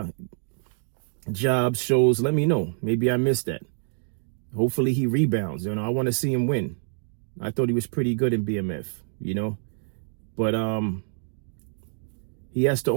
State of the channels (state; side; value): silent; left; digital silence